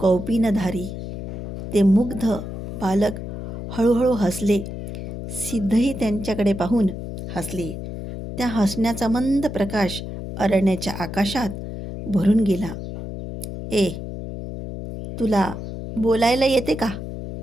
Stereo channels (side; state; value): left; noise; hum, 8 dB below the sound